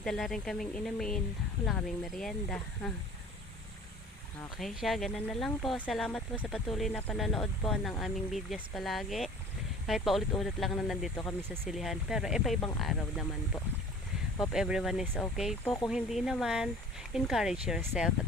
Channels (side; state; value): both; normal; correlation 0.46